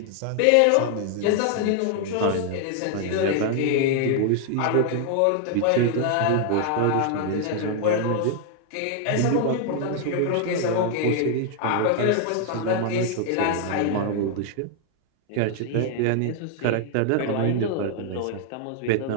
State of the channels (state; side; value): different; both; correlation 0.00